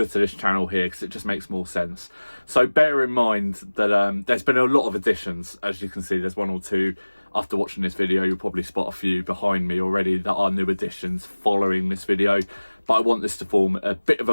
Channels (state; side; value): inverted; both; correlation -1.00